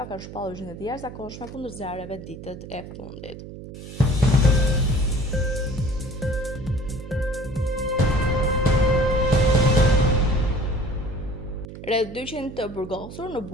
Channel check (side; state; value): right; noise; hum, 13 dB below the sound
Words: kanë shpallur gjendje të jashtëzakonshme kundër zjarreve ditët e fundit. Rreth 200 të burgosur në